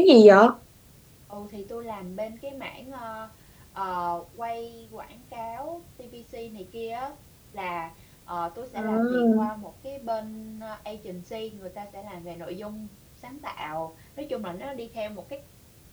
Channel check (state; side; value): identical; both; correlation 1.00